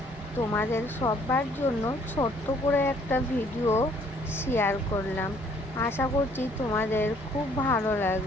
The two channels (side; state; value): both; normal; correlation 0.61